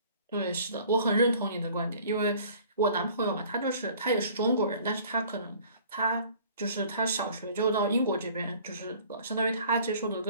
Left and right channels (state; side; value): inverted; both; correlation -0.51